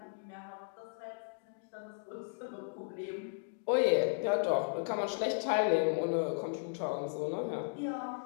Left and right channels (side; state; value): right; silent; digital silence